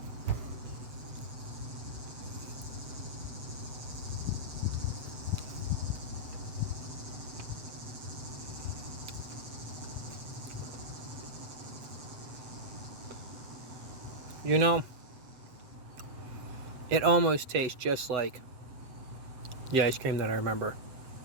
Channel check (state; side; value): late; left; 7.8 ms